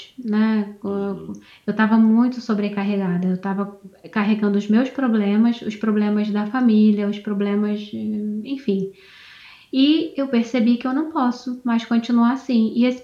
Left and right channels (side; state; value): both; identical; correlation 1.00